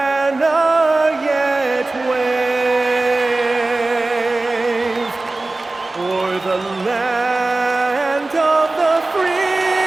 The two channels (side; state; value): left; quieter; 3.1 dB